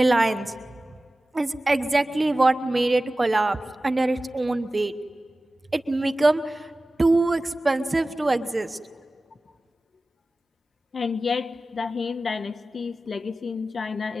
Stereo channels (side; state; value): both; normal; correlation 0.96